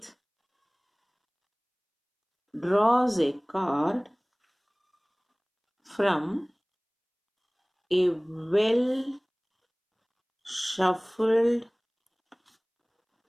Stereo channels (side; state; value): both; identical; correlation 1.00